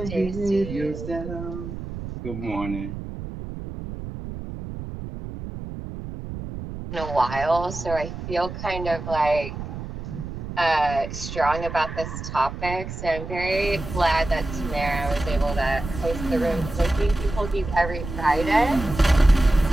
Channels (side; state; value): right; noise; rumble, 9 dB below the sound